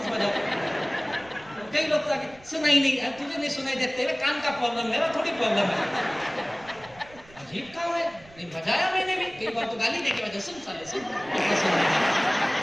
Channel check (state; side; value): noise; right; rumble, 24 dB below the sound